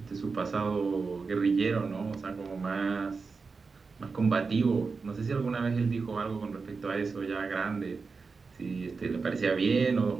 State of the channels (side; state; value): left; quieter; 4.6 dB